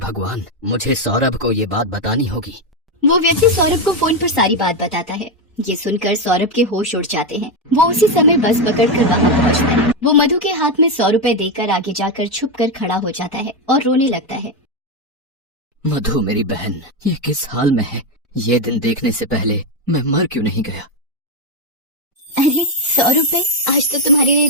मुझे सौरभ को ये बात बतानी होगी। वो व्यक्ति सौरभ को फोन पर सारी बात बताता है। ये सुनकर सौरभ के होश उड़ जाते हैं। वो उसी समय बस पकड़कर वहाँ पहुँचता है। वो मधु के हाथ में 100 रुपए देकर आगे जाकर छुप कर खड़ा हो जाता है और रोने लगता है। मधु मेरी बहन, ये किस हाल में है? ये दिन देखने से पहले मैं मर क्यों नहीं गया? अरे 100 रुपए, आज तो तुम्हारे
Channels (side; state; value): both; normal; correlation 0.07